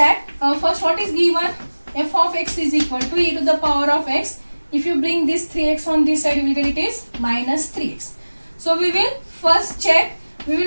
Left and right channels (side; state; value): both; inverted; correlation -1.00